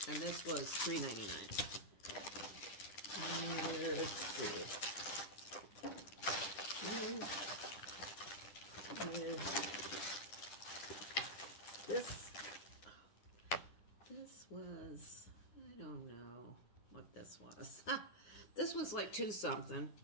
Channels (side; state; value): right; late; 10 ms